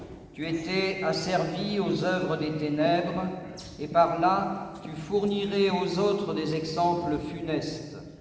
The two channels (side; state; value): both; identical; correlation 1.00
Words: tu étais asservi aux œuvres des ténèbres, et par là tu fournirais aux autres des exemples funestes.